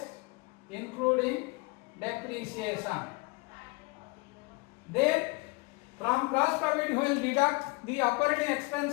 including depreciation. Then from gross profit we will deduct the operating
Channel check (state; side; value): quieter; right; 27.6 dB